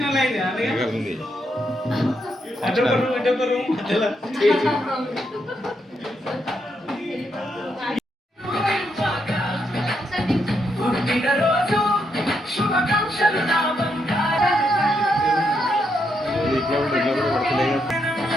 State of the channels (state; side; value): normal; both; correlation 0.79